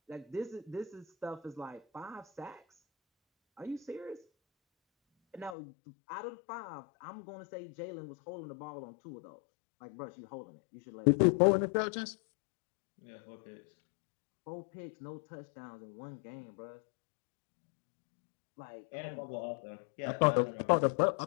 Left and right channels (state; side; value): drops out; right; at 5.6 s